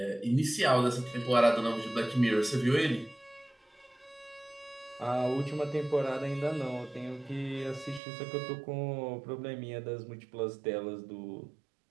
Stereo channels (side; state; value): left; drops out; at 8.0 s